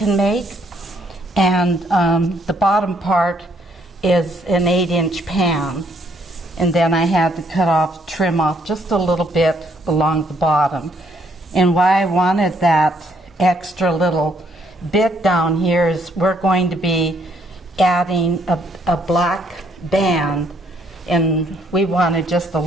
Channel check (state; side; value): normal; both; correlation 0.69